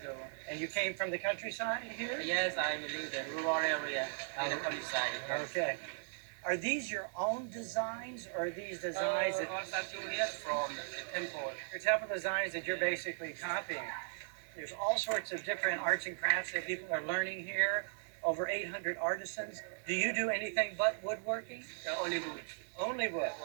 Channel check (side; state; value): left; silent; digital silence